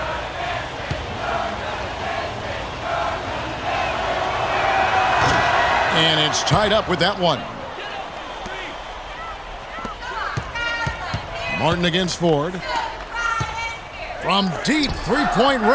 And it's tied up with that one. Martin against Ford. From deep three-point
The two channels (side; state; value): both; identical; correlation 1.00